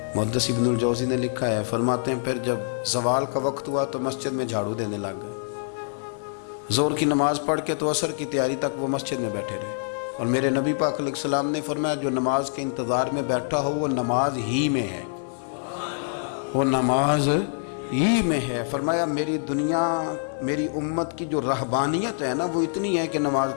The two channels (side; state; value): right; silent; digital silence